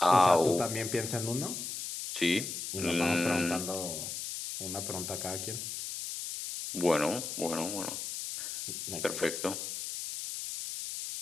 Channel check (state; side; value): noise; left; hiss, 6 dB below the sound